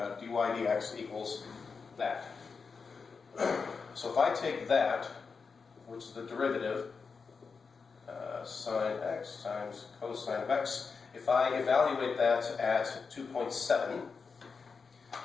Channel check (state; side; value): quieter; right; 5.2 dB